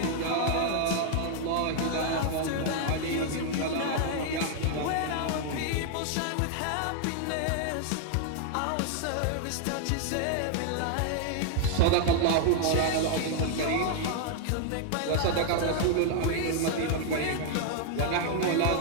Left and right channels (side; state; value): both; different; correlation 0.00